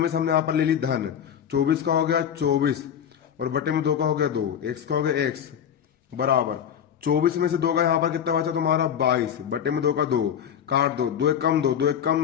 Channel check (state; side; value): quieter; right; 8.8 dB